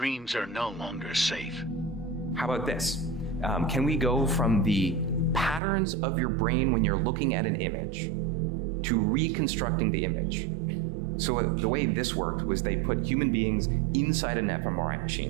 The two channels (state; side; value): drops out; left; at 5.6 s